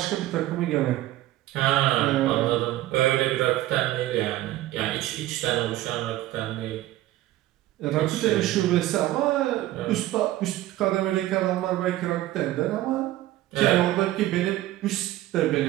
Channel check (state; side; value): quieter; left; 15.3 dB